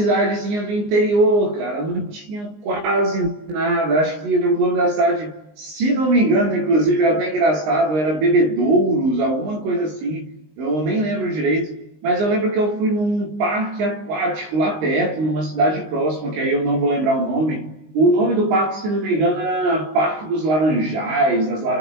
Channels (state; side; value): late; left; 19 ms